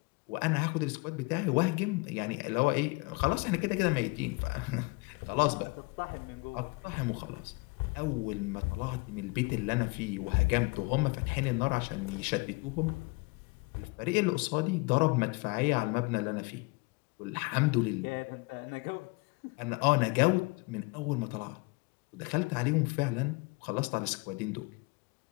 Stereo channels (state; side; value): quieter; right; 27.5 dB